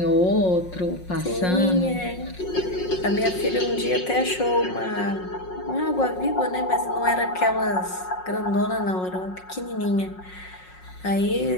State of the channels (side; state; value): right; late; 5.5 ms